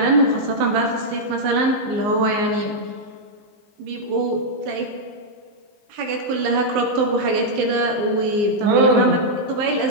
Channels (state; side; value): late; left; 19 ms